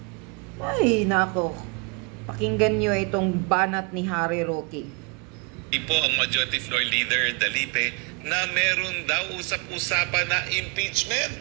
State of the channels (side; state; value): left; quieter; 31.8 dB